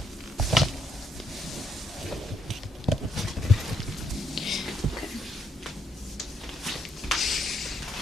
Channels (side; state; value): both; normal; correlation 0.75